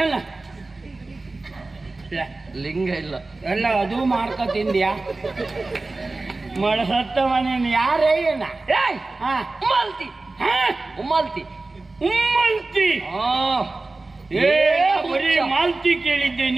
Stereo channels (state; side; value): quieter; left; 3.3 dB